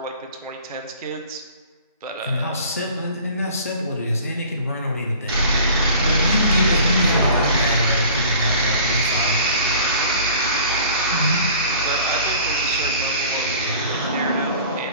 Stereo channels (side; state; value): both; inverted; correlation -0.46